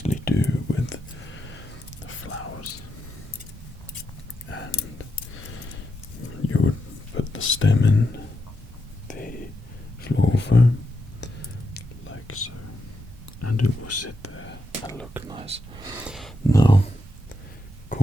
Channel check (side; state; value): both; normal; correlation 0.84